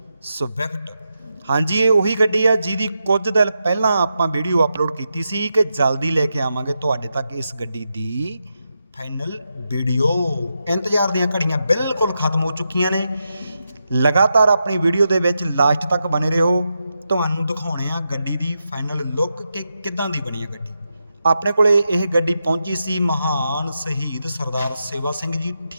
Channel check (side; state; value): both; inverted; correlation -0.87